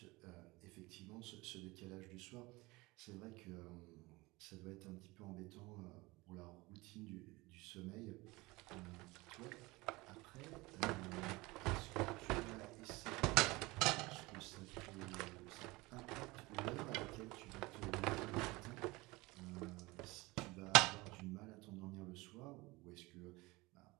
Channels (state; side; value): quieter; left; 22.5 dB